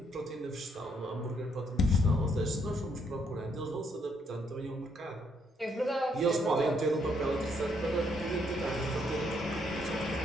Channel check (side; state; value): both; normal; correlation 0.72